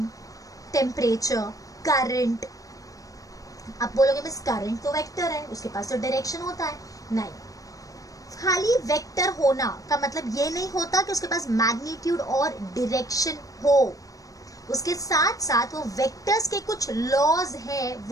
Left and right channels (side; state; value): right; late; 0.17 ms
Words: टेम्परेचर, करंट. आप बोलोगे मिस करंट तो वेक्टर है, उसके पास तो डायरेक्शन होता है. नहीं, खाली वेक्टर होना का मतलब ये नहीं होता कि उसके पास मैग्नीट्यूड और डायरेक्शन हो. उसके साथ साथ वो वेक्टर्स के कुछ लॉज हैं